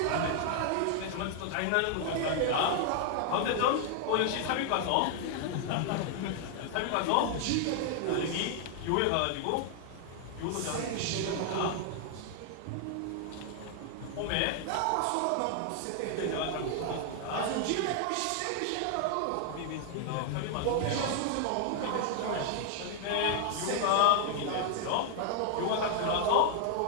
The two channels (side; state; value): both; different; correlation 0.00